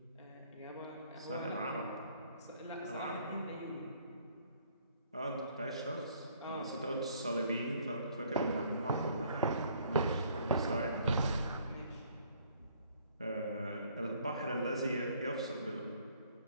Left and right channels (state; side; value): inverted; both; correlation -0.61